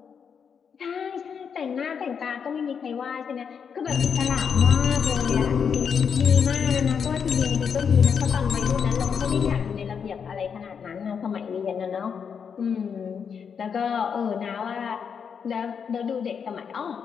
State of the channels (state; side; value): quieter; right; 6.8 dB